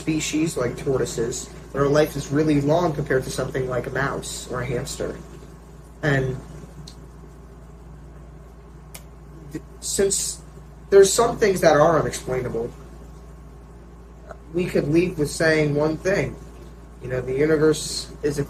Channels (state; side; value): identical; both; correlation 1.00